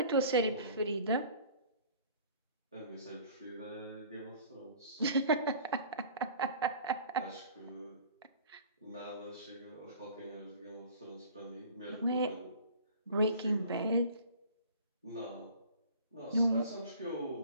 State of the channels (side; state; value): both; inverted; correlation -0.47